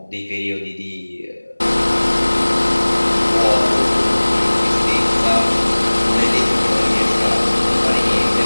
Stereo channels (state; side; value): inverted; both; correlation -1.00